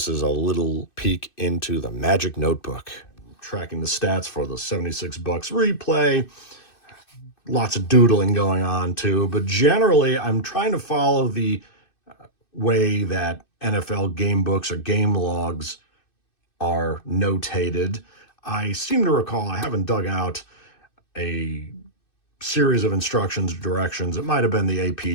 is a little peek into the magic notebook. Tracking the stats for the 76 Bucks replay. Lots of doodling going on too, but generally I'm trying to follow the way that NFL game books or game logs are notated. I seem to recall, I haven't dug out a series of instructions, directions. It might have been the AP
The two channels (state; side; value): late; right; 2.6 ms